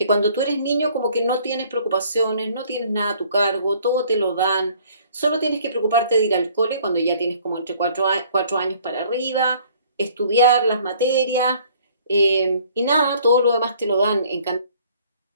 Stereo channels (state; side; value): inverted; both; correlation -0.57